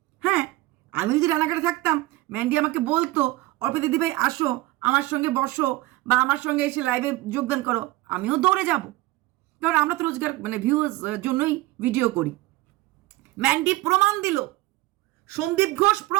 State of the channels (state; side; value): quieter; left; 18.8 dB